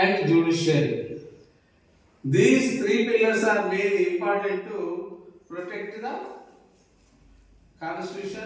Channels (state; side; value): identical; both; correlation 1.00